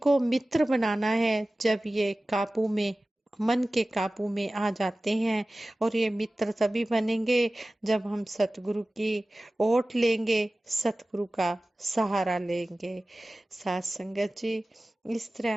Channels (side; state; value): both; normal; correlation 0.97